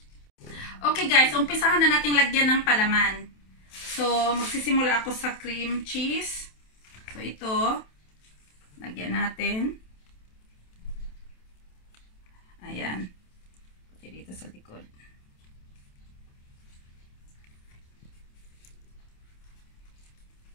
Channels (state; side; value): late; right; 27 ms